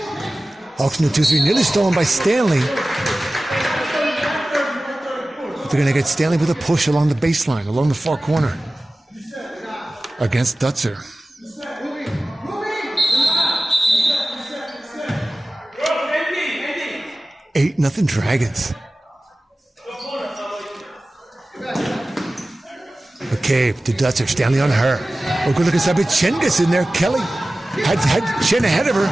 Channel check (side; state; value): both; normal; correlation 0.96